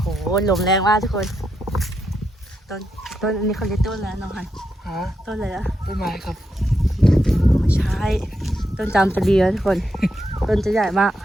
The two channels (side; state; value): both; normal; correlation 0.83